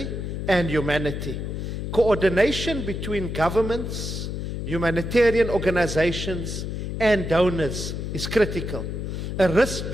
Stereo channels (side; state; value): left; noise; hum, 4 dB below the sound